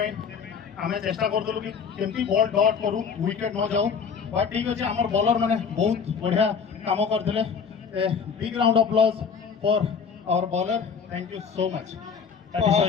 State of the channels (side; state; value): right; quieter; 6.2 dB